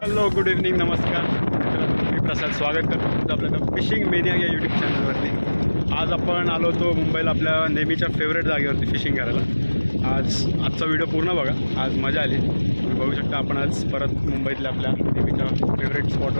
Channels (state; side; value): inverted; both; correlation -1.00